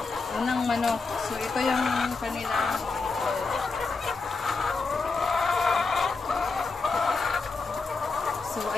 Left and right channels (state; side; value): quieter; right; 4.2 dB